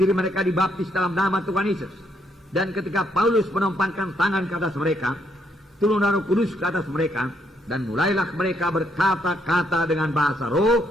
mereka dibaptis dalam nama Tuhan Yesus. Dan ketika Paulus menumpangkan tangan ke atas mereka, turun Roh Kudus ke atas mereka, dan mulailah mereka berkata-kata dengan bahasa roh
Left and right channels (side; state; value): both; normal; correlation 0.73